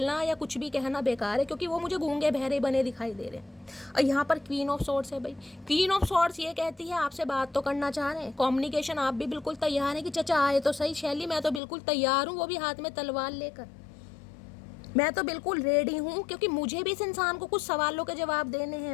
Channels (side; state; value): right; drops out; at 11.6 s